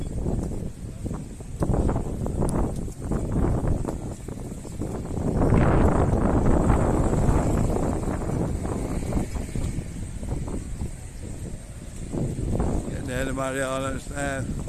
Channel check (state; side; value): identical; both; correlation 1.00